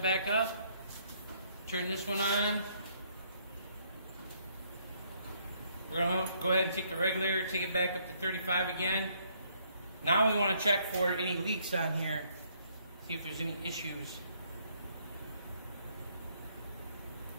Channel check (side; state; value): both; inverted; correlation -0.68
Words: up. Turn this one on. We're going to go ahead and take the regulator, take it back up to 35 again. Now we want to check for any leaks on here, see if there's any issues.